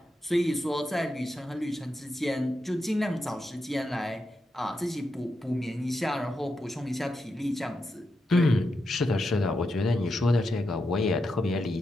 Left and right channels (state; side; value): normal; both; correlation 0.86